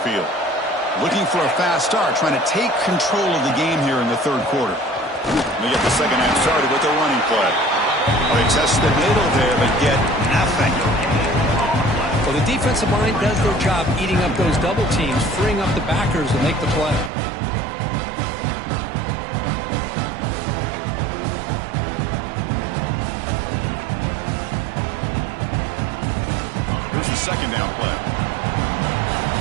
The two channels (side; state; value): left; drops out; at 17.1 s